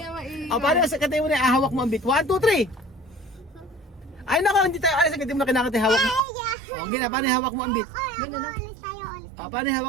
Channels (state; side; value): drops out; left; at 6.2 s